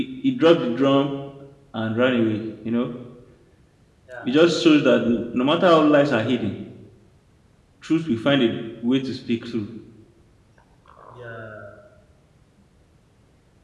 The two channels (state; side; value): identical; both; correlation 1.00